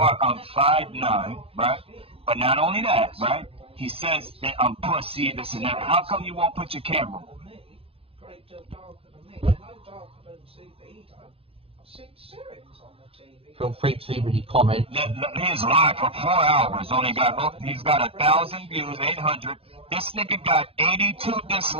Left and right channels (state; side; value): late; left; 0.27 ms